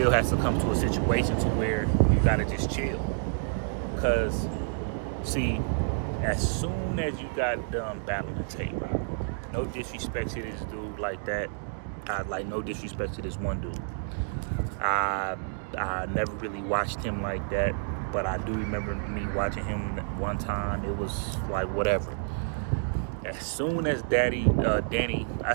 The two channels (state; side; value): silent; left; digital silence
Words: has to come to a situation to where you got to just chill. Because, see, as soon as you got done battling Tay-Rock, no disrespect to this dude like that. No disrespect to this one dude. I never really watched him like that, but I do remember me watching him one time. It was like whatever. As soon as Danny, I